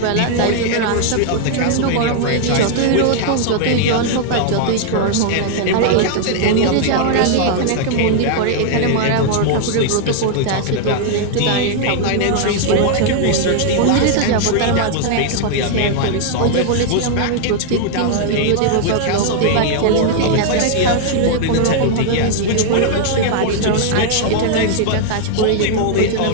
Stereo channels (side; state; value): both; different; correlation 0.00